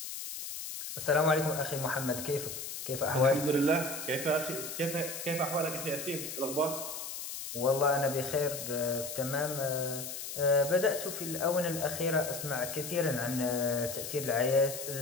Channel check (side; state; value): left; noise; hiss, 7 dB below the sound